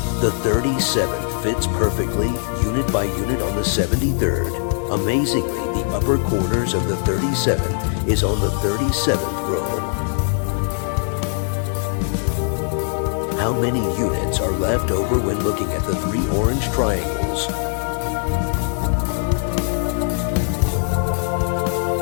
The 37th fits perfectly, unit by unit, on the 73rd. Amazingly, the upper corners of the 37th is on the 37th row. How many units are left over when looking at the 3 orange triangles?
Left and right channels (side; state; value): right; silent; 59 dB below the other